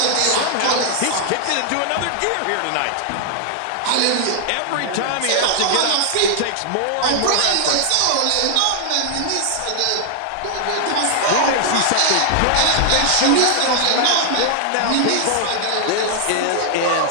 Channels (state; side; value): different; both; correlation 0.00